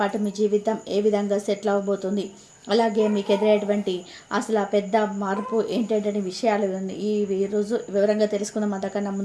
మీ జీవితం ఏ విధంగా సెటిల్ అవ్వబోతుంది, అలాగే మీకు ఎదురయ్యేటువంటి అసలు ఆ పెద్ద మార్పు ఏంటంటే విషయాలు ఈ రోజు వివరంగా తెలుసుకుందాం. అంతకన్నా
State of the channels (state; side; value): identical; both; correlation 1.00